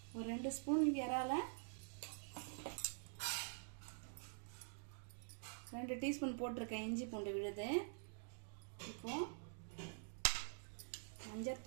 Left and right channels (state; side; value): silent; left; digital silence